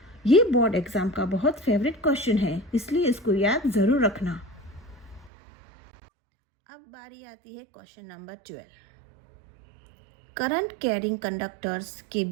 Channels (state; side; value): drops out; left; at 5.3 s